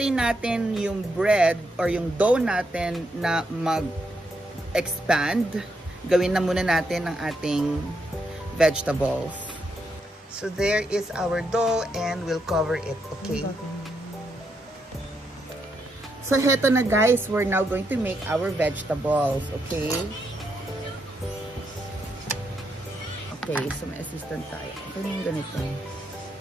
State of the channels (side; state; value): both; normal; correlation 0.80